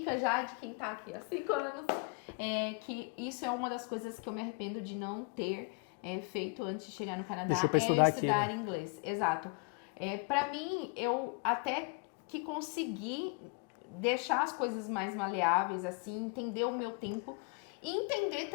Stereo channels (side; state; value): right; quieter; 32.1 dB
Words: já de quem tá aqui há 5 anos, que isso é uma das coisas que eu me arrependo de não ter feito antes de chegar no Canadá, estudar inglês. Exato. Para mim, eu até que consegui deixar as coisas mais maleáveis, assim, entender o meu tempo e entender